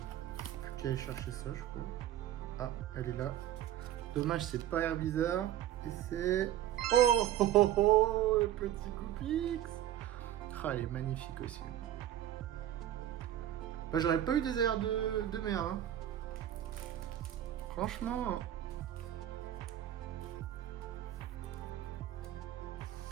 Plus qu'à aller chercher ça je crois. Ah, elle est là. Dommage c'est pas Air Bizarre. Et c'est... Oh, oh, oh, oh, le petit Goopix. Ah, elle est magnifique aussi. Bah, j'aurais pas eu des airs de merde. Hein. Franchement.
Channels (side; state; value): left; quieter; 12.2 dB